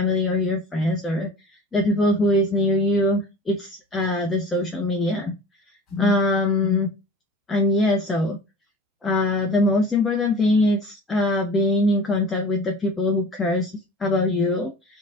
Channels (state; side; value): normal; both; correlation 0.39